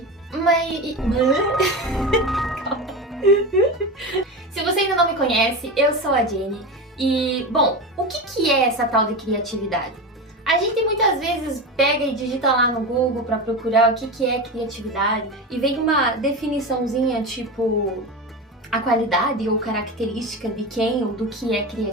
Se você ainda não me conhece, eu sou a Jenny. E, bom, o que é essa tal de criatividade? A gente muitas vezes pega e digita lá no Google para procurar o que é criatividade e vem uma definiçãozinha tipo a qualidade ou característica de quem ou do que é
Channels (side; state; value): both; normal; correlation 0.23